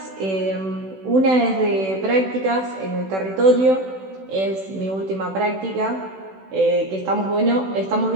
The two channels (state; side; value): late; left; 16 ms